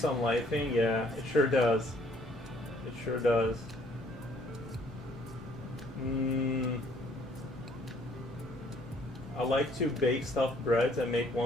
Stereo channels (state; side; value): normal; both; correlation 0.62